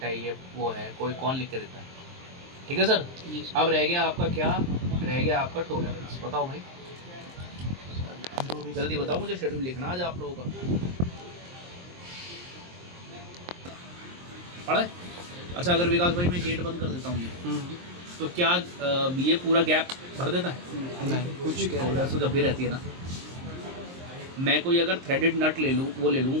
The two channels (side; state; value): left; late; 23 ms